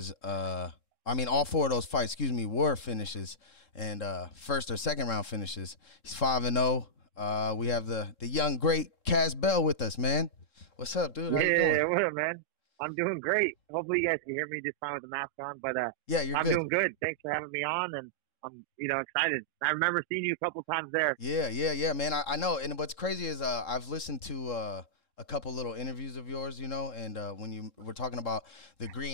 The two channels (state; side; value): late; right; 3.7 ms